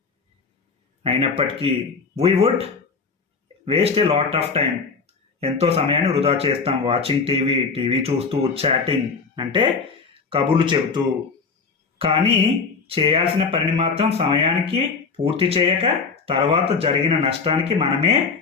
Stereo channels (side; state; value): right; quieter; 5.0 dB